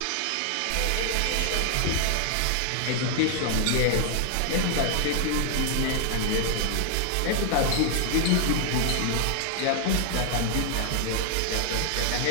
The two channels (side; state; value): both; different; correlation 0.00